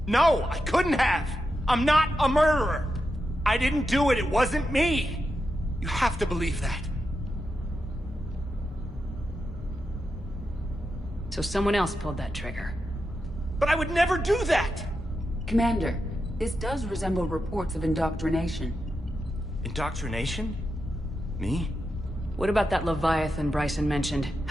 No, I couldn't have! I'm not a murderer! I didn't do it, it wasn't me! You have to believe that. So someone else pulled that trigger. But I would never do that! Commander, this does resemble reports of indoctrination. Indoctrination? Me? What about that Leviathan Bryson mentioned?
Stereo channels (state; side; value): normal; both; correlation 0.88